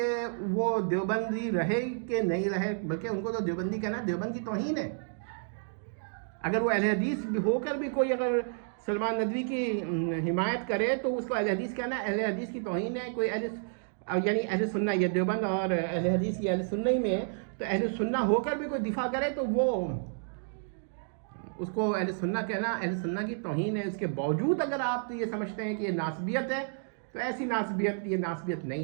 وہ دیوبندی رہے کہ نہیں رہے، بلکہ ان کو تو دیوبندی کہنا دیوبند کی توہین ہے. اگر وہ اہل حدیث ہو کر بھی کوئی اگر سلمان ندوی کی حمایت کرے تو اس کو اہل حدیث کہنا اہل حدیث کی توہین ہے. کوئی یعنی اہل سنہ، یہ دیوبند اور اہل حدیث یہ اہل سنہ ہی میں ہے، تو اہل سنہ ہو کر بھی کوئی دفاع کرے تو وہ اس کو اہل سنہ کہنا اہل سنہ کی توہین ہے. اس کے باوجود اگر آپ یہ سمجھتے ہیں کہ یہ ناسبیت ہے تو ایسی ناسبیت، یہ ناسبیت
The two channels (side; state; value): left; silent; digital silence